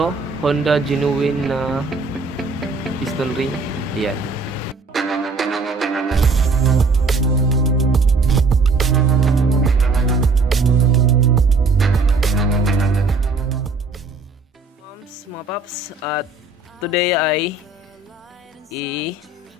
Honda Genuine na piston ring. Ayan. Mga paps, at today ay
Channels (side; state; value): left; quieter; 3.6 dB